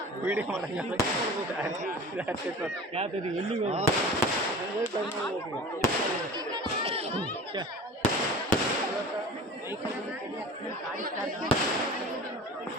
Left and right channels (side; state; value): both; normal; correlation 0.39